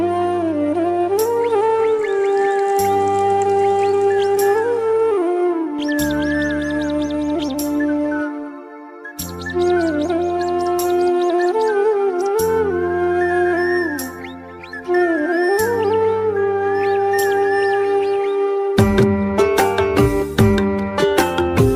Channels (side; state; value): both; identical; correlation 1.00